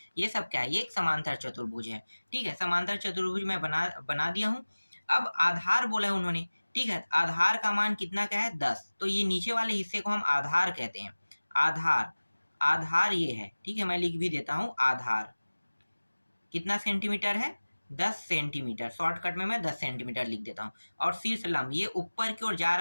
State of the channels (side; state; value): both; inverted; correlation -1.00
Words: ये सब क्या है, ये एक समांतर चतुर्भुज है। ठीक है, समांतर चतुर्भुज मैं बना दिया हूँ। अब आधार बोला है उन्होंने। ठीक है, आधार का मान कितना का है, 10। तो ये नीचे वाले हिस्से को हम आधार कहते हैं। आधार, आधार ये है। ठीक है, मैं लिख भी देता हूँ, आधार कितना सेंटीमीटर है, 10 सेंटीमीटर। शॉर्टकट में मैं 10 सेंटीमीटर लिख देता हूँ। और शीर्ष लंब ये ऊपर की ओर जा